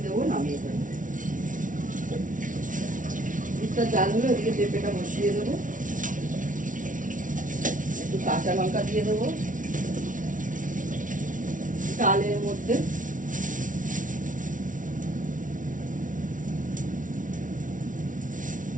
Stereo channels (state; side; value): late; left; 0.38 ms